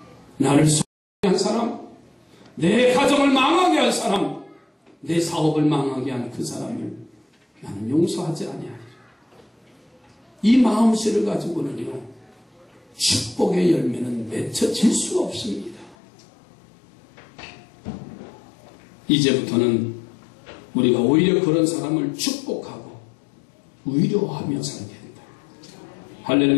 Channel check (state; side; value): drops out; right; at 16.0 s